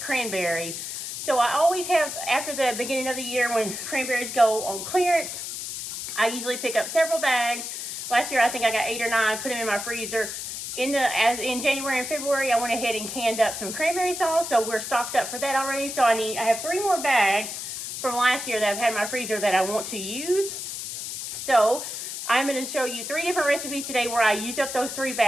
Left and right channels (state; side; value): noise; left; hiss, 6 dB below the sound